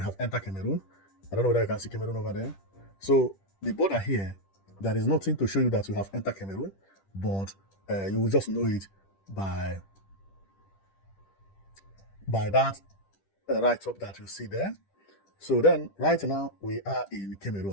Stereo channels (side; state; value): right; late; 10 ms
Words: have entered Cameroon. I don't know whether you can see Cameroon over there. So the border here, there is nothing to show you that you have entered Cameroon, but you will just know it by that right up that you see there. So then, right now, we are in